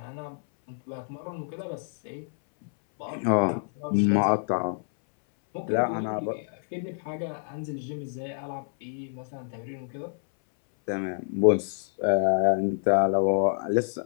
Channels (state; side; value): silent; right; 60 dB below the other